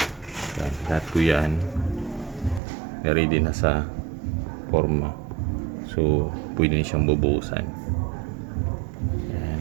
Yan. Lahat ko yan. Ready na sa forma. So pwede na siyang bubuhusan. Yan.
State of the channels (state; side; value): drops out; left; at 2.6 s